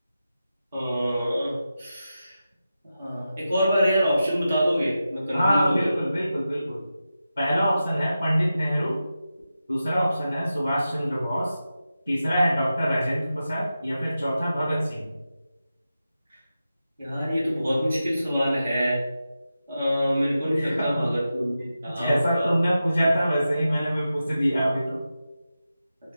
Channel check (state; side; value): inverted; both; correlation -0.92